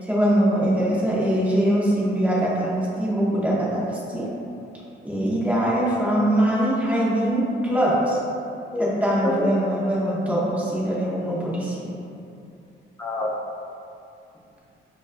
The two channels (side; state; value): both; normal; correlation 0.71